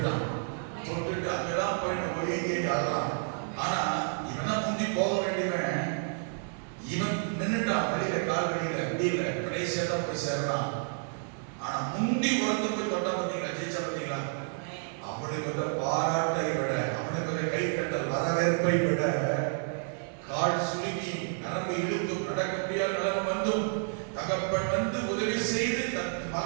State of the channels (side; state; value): left; silent; 58 dB below the other